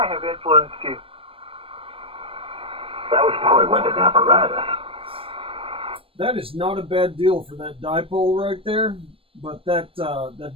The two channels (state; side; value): late; left; 0.27 ms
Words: have influenced you? That was probably with an apparatus. That is not a bad deal for that dipole right there, but that